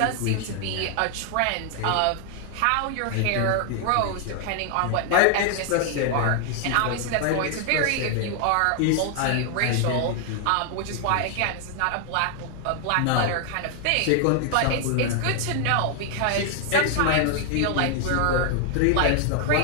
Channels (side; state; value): both; different; correlation 0.00